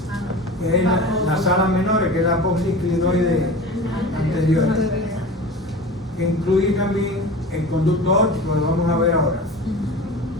que es las alas menores, que es la apófisis clinoide anterior, que incluye también el conducto óptico, lo vamos a ver ahora.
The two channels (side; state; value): both; normal; correlation 0.34